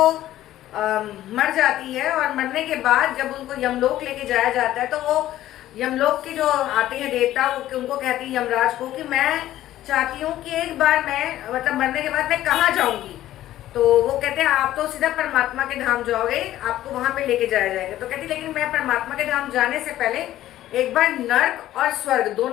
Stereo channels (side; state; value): right; quieter; 13.7 dB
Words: मर जाती है और मरने के बाद जब उनको यमलोक लेके जाया जाता है तो वो यमलोक के जो आते हैं देवता उनको कहती है यमराज को कि मैं चाहती हूँ कि एक बार मैं मतलब मरने के बाद मैं कहाँ जाऊंगी। तो वो कहते हैं आप तो सीधा परमात्मा के धाम जाओगे, आपको वहां पे लेके जाया जाएगा। तो कहती लेकिन मैं परमात्मा के धाम जाने से पहले एक बार नर्क और स्वर्ग